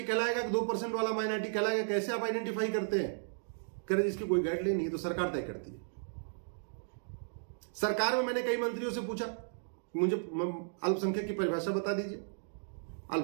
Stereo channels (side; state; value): left; silent; digital silence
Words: कहलाएगा कि 2% वाला माइनॉरिटी कहलाएगा, कैसे आप आइडेंटिफाई करते हैं? कह रहे इसकी कोई गाइडलाइन नहीं है, तो सरकार तय करती है। सरकार में मैंने कई मंत्रियों से पूछा, मुझे अल्पसंख्यक की परिभाषा बता दीजिए,